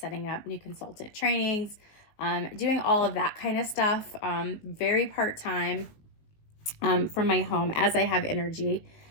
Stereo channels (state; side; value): late; right; 19 ms